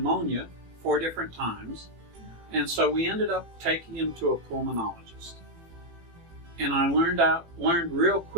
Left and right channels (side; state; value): left; late; 18 ms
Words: 4 different times, and so we ended up taking him to a pulmonologist. And I learned real